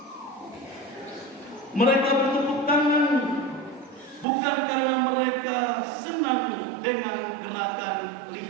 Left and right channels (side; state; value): left; drops out; at 4.2 s